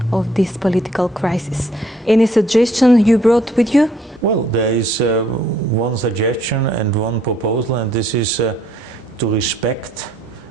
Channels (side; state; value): both; normal; correlation 0.65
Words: of this political crisis? Any suggestion you brought with you? Well, there is one suggestion and one proposal, and this is to respect